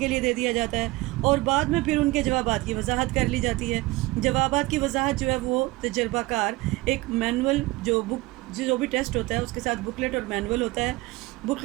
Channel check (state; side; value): quieter; left; 20.8 dB